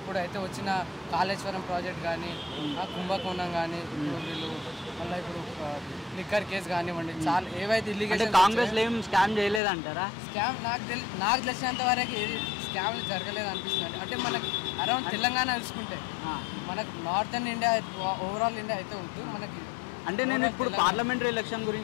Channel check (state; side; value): drops out; right; at 9.6 s